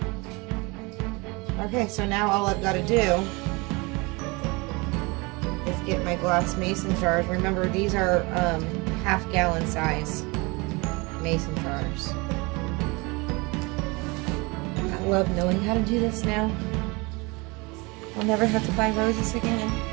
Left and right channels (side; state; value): left; quieter; 26.3 dB